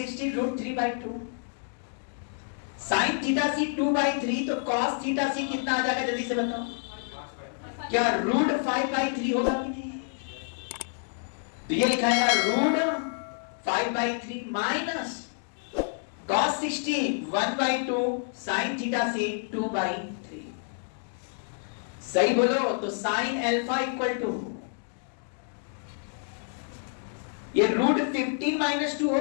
root 3/2, sine theta C 2/3, तो कॉस थीटा सी कितना आ जाएगा जल्दी से बताओ? क्या रूट 5/3 होगा कि नहीं? तो ये लिखाएगा root 5/3 minus cos 60 1/2 sin theta C 2/3। सही बोलो तो साइन अल्फा इक्वल टू ये रूट 15 माइनस 2 हो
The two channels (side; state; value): right; silent; 59 dB below the other